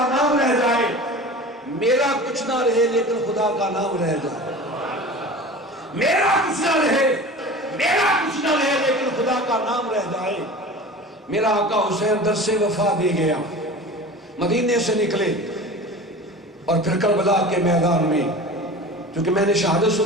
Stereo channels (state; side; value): normal; both; correlation 0.36